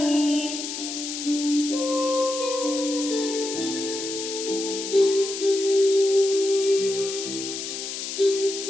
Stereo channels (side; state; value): left; noise; hiss, 6 dB below the sound